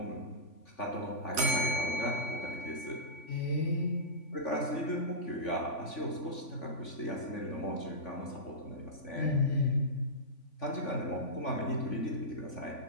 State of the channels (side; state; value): right; late; 3.5 ms